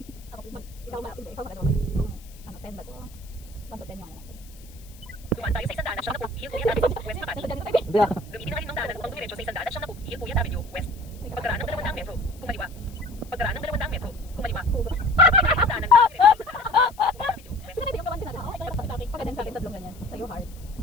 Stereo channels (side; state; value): left; noise; hiss, 23 dB below the sound